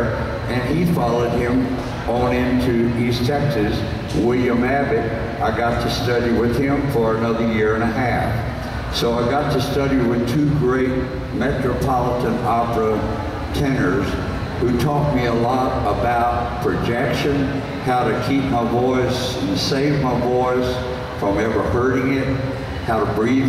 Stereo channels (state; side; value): identical; both; correlation 1.00